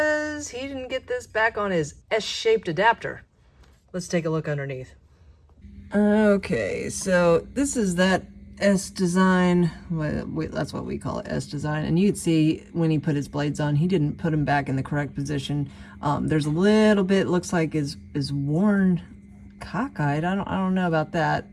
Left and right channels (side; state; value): both; identical; correlation 1.00